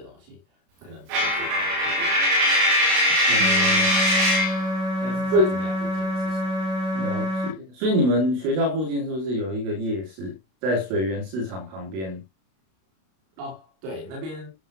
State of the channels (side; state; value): left; late; 32 ms